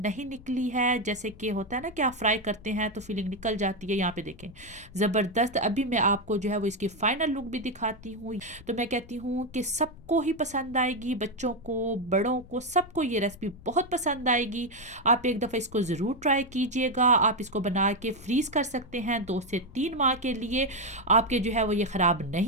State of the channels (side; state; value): left; noise; rumble, 20 dB below the sound